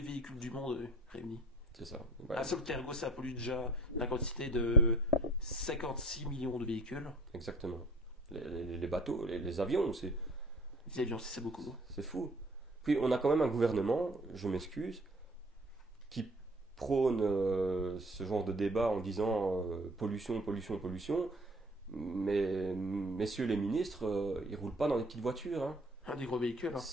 véhicules du monde réunis. c'est ça. Ouais, Un seul cargo, ça pollue déjà la quantité de 56 millions de véhicules. exactement. Les bateaux, les avions, Les avions, c'est beaucoup. c'est fou. Puis on a quand même un gouvernement, je m'excuse, qui prône ce genre de débat en disant pollution, pollution, pollution. Mais messieurs les ministres, ils roulent pas dans des petites voitures, hein. Un des gros véhicules. Hein.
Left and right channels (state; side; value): normal; both; correlation 0.52